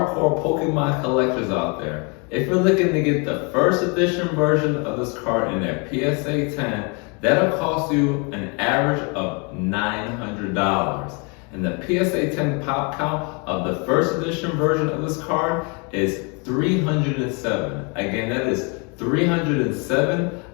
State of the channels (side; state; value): right; quieter; 33.0 dB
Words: Pokemon collectors out there, if you're looking to get the first edition version of this card in their PSA 10, that'll cost you an average of $900. And the PSA 10 pop count of the first edition version of this card is 307. Again, that is 307